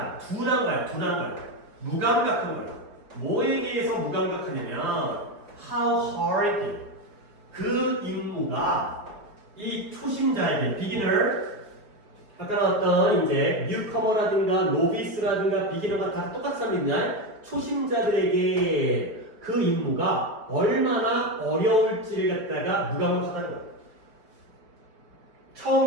둔한 거야. 둔한 거야. 무감각한 거야. 뭐에 대해서 무감각하냐면 how hard 그 임무가 이 초심자에게 beginner 아까 나왔던 이제 뉴커머라든가 노비스라든가 비기너가 다 똑같은 사람이냐? 초심자들에게 그 임무가 얼마나 어려울지를 갖다가 무감각하다는 거야. 처음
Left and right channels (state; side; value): late; left; 4.9 ms